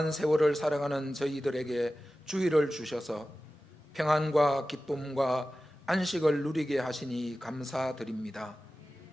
세월을 살아가는 저희들에게 주의를 주셔서 평안과 기쁨과 안식을 누리게 하시니 감사드립니다.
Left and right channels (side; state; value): both; normal; correlation 0.95